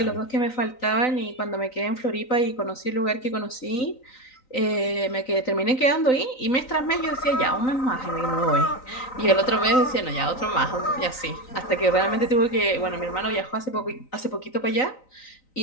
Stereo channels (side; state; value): right; late; 3.9 ms